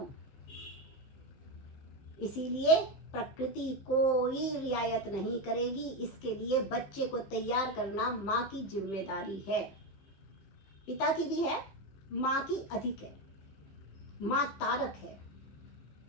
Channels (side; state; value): right; late; 15 ms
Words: इसीलिए प्रकृति कोई रियायत नहीं करेगी, इसके लिए बच्चे को तैयार करना माँ की जिम्मेदारी है, पिता की भी है, माँ की अधिक है। माँ तारक है।